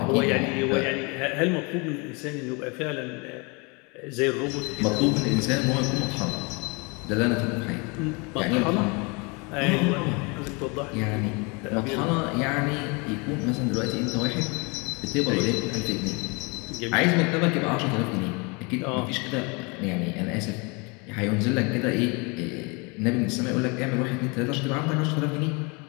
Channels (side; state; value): right; quieter; 29.9 dB